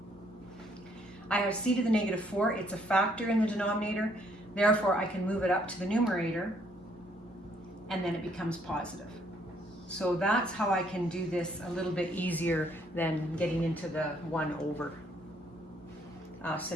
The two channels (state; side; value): normal; both; correlation 0.67